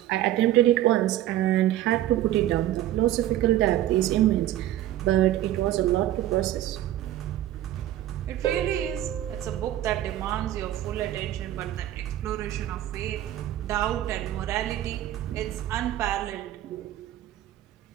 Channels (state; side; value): quieter; left; 13.3 dB